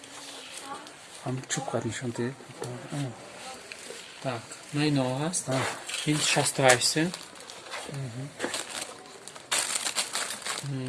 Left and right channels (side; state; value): both; identical; correlation 1.00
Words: Ҳам чӯб қад нишон дед. Так, ма ино ҳаст. ин 68 сум.